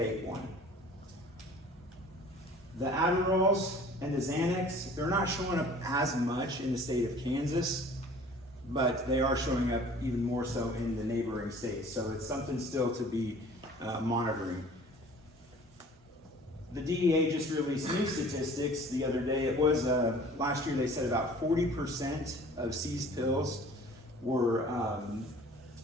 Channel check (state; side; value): normal; both; correlation 0.48